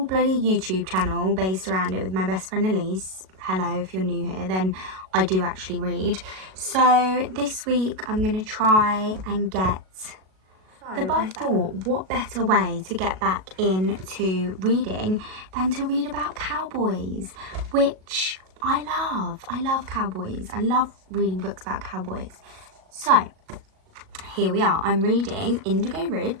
bloody YouTube channel based around it with my best friend Elise. Hello, if you're new here, then I do actually read. So this week I'm gonna try and get. But I thought, what better way to get back into reading than to read about cowboys, which I love. I love cowboys. I love reading books about cowboys. So here we are. I'm reading Indigo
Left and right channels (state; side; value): late; left; 37 ms